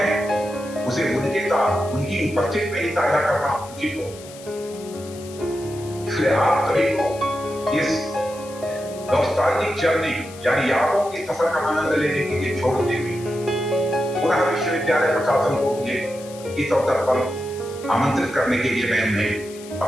उसे उनके साथ उनकी उपस्थिति में ही साझा करना उचित हो। इसलिए आप सभी को इस नॉस्टैल्जिक जर्नी यानी यादों की सफर का आनंद लेने के लिए छोड़ते हुए पुनः विश्वविद्यालय प्रशासन को मुझे इस अवसर पर आमंत्रित करने के लिए मैं उन्हें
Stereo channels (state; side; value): noise; left; hiss, 18 dB below the sound